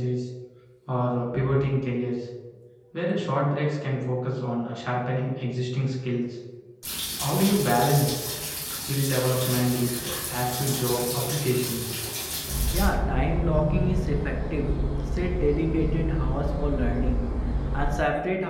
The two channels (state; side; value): identical; both; correlation 1.00